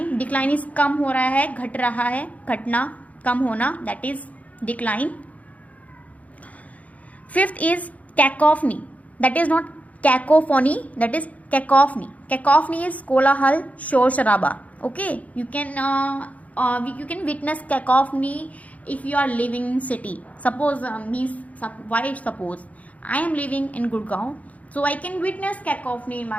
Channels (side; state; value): right; late; 0.070 ms